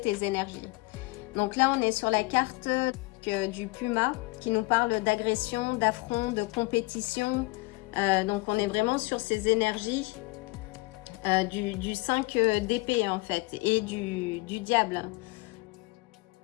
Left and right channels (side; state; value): right; quieter; 23.6 dB